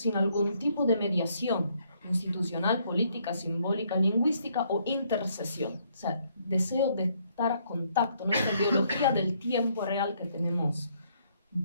algún tipo de mediación institucional, política, simbólica, lingüística o intercesión. O sea, deseo de estar a contacto, nuestra biología del tiempo real que tenemos un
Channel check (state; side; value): inverted; both; correlation -0.69